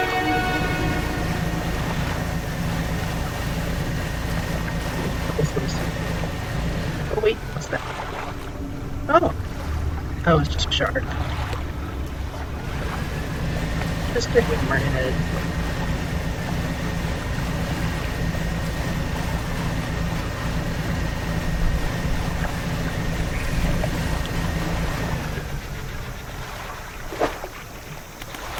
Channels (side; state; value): both; identical; correlation 1.00